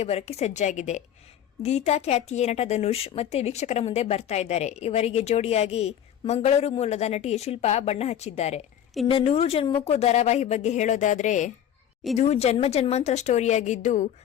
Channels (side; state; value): right; quieter; 10.0 dB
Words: ಬರೋಕ್ಕೆ ಸಜ್ಜಾಗಿದೆ. ಗೀತಾ ಖ್ಯಾತಿಯ ನಟ ಧನುಷ್ ಮತ್ತೆ ವೀಕ್ಷಕರ ಮುಂದೆ ಬರ್ತಾ ಇದ್ದಾರೆ. ಇವರಿಗೆ ಜೋಡಿಯಾಗಿ ಮಂಗಳೂರು ಮೂಲದ ನಟಿ ಶಿಲ್ಪಾ ಬಣ್ಣ ಹಚ್ಚಿದ್ದಾರೆ. ಇನ್ನು ನೂರು ಜನ್ಮಕ್ಕೂ ಧಾರಾವಾಹಿ ಬಗ್ಗೆ ಹೇಳೋದಾದ್ರೆ ಇದು ಜನ್ಮಾಂತರ ಸ್ಟೋರಿಯಾಗಿದ್ದು